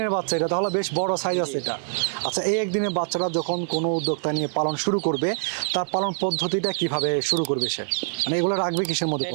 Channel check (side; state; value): left; silent; 62 dB below the other